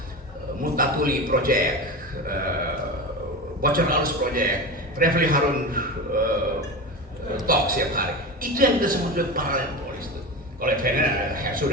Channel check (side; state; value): both; normal; correlation 0.25